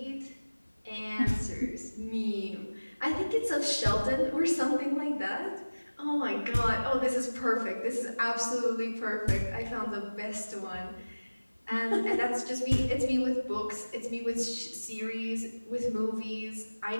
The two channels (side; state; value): both; inverted; correlation -1.00